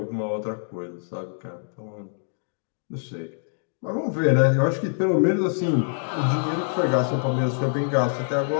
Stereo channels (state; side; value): silent; right; digital silence